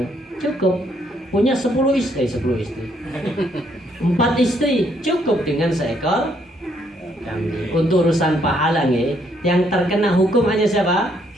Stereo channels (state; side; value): normal; both; correlation 0.70